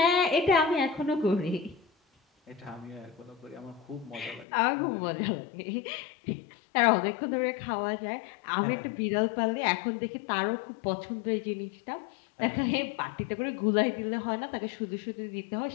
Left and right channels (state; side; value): drops out; right; at 4.5 s